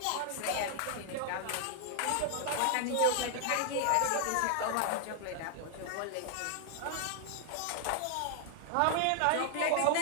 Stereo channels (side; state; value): both; different; correlation 0.00